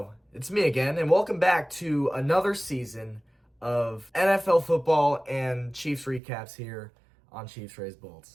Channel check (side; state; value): left; drops out; at 6.2 s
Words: it's me again, and welcome back to another season of NFL football and Chiefs recaps here on Chiefs Raised